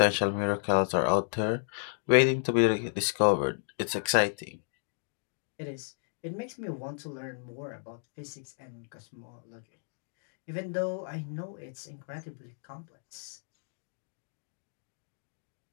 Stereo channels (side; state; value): right; silent; digital silence